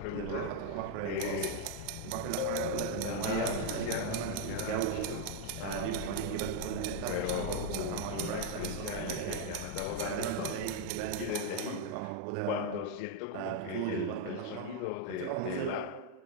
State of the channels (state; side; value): different; both; correlation 0.00